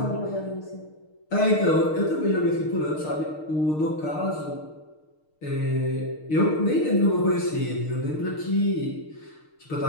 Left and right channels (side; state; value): right; late; 6.5 ms